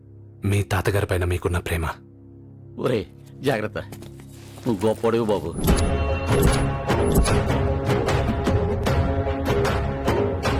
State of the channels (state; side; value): identical; both; correlation 1.00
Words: మీ తాతగారి పైన మీకున్న ప్రేమ. ఒరే జాగ్రత్త, నువ్వు గొప్పడివి బాబు.